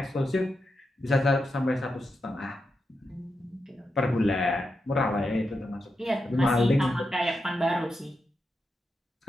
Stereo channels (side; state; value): both; normal; correlation 0.87